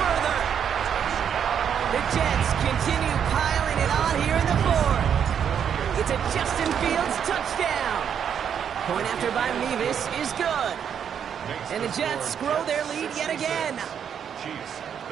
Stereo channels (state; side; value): quieter; left; 8.2 dB